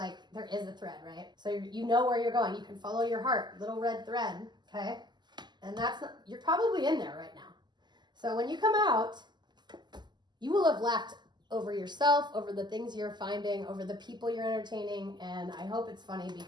there is a thread, right? So you know where you're going. You can follow your heart, little red thread, okay? And you're probably in there right now. So when you come out, you will have laughed over yourself, over the things you're finding, over the people you're entertaining, and I hope it's funny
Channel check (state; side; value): late; left; 0.21 ms